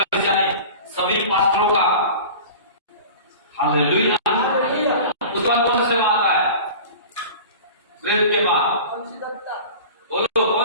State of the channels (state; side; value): inverted; both; correlation -0.38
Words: नहीं, सभी पास्टरों का। हालेलुया। उसके बाद कौन सा सेवा आता है? प्रेरित के बाद बोलो